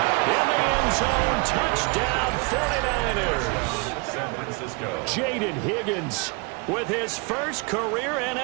In the end zone. Touchdown 49ers. San Francisco. Jaden Higgins with his first career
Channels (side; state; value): left; quieter; 30.5 dB